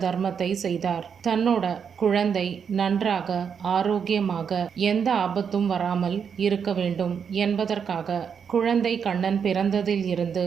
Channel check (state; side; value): quieter; left; 7.0 dB